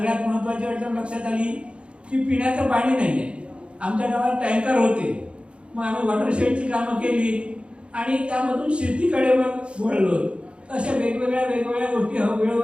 महत्त्वाची अडचण लक्षात आली की पिण्याचं पाणी नाही आहे. आमच्या गावात टँकर होते, मग आम्ही वॉटरशेडची कामं केली आणि त्यामधून शेतीकडे मग वळलो. अशा वेगवेगळ्या गोष्टी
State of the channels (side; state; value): left; late; 0.058 ms